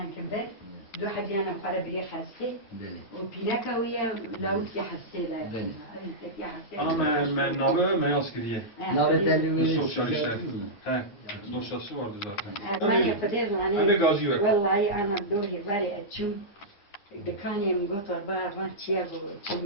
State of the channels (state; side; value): late; right; 9.7 ms